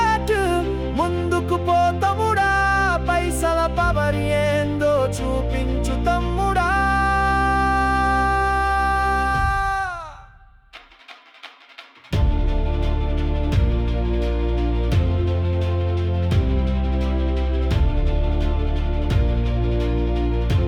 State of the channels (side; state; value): both; identical; correlation 1.00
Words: ముందుకు పో తమ్ముడా. పైసల పవర్ ఏందో చూపించు తమ్ముడా.